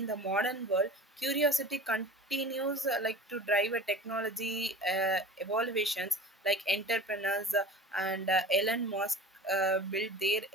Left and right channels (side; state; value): both; normal; correlation 0.38